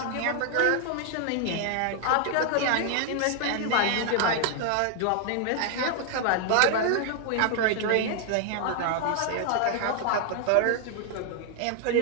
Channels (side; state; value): both; different; correlation 0.00